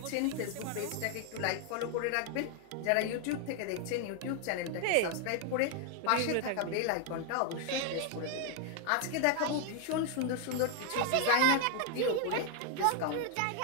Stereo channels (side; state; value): both; different; correlation 0.00